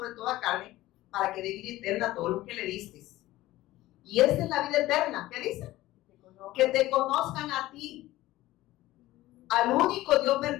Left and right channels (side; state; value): right; quieter; 16.7 dB